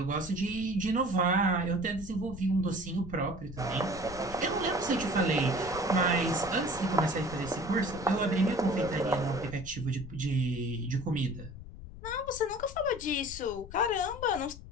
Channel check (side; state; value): left; noise; rumble, 14 dB below the sound